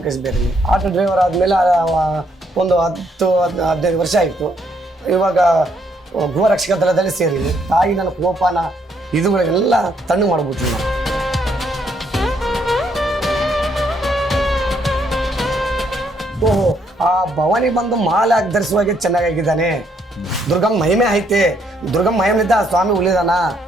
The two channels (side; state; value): both; normal; correlation 0.71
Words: ಬೇರೆನೆ. ಆಟೋ ಡ್ರೈವರ್ ಆದಮೇಲೆ ಒಂದು 10-15 ವರ್ಷ ಆಯಿತು. ಇವಾಗ ಗೃಹ ರಕ್ಷಕ ದಳದಲ್ಲಿ ಸೇರಿದ್ದೀನಿ. ತಾಯಿ ನನ್ನ ಕೋಪನ ಇದುಗಳೆಲ್ಲ ತಣ್ಣಗೆ ಮಾಡ್ಬಿಡ್ತೀನಿ ನಾನು. ಓಹೋ, ಆ ಭವಾನಿ ಬಂದು ಮಾಲೆ ಹಾಕಿ ಧರಿಸುವಾಗೆ ಚೆನ್ನಾಗಿದ್ದಾನೆ. ದುರ್ಗಮ್ಮ ಮಹಿಮೆ ಐತೆ. ದುರ್ಗಮ್ಮ ಮಹಿಮೆಯಿಂದ ಸ್ವಾಮಿ ಉಳಿದಾನ,